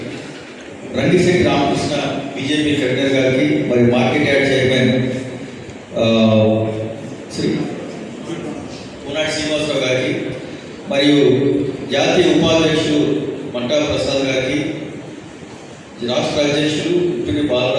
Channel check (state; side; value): identical; both; correlation 1.00